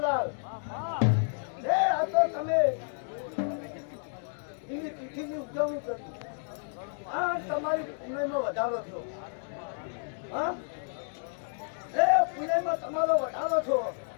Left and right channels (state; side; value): silent; right; digital silence